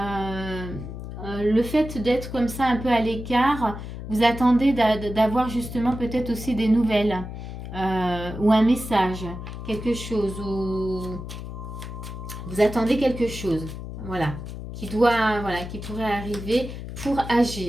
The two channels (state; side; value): noise; left; hum, 9 dB below the sound